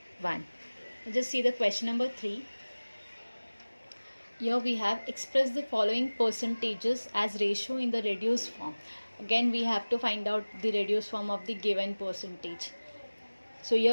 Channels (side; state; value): both; inverted; correlation -1.00